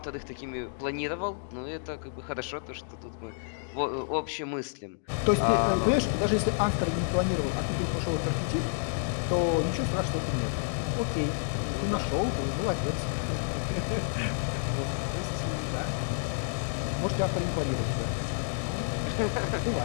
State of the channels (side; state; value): right; silent; digital silence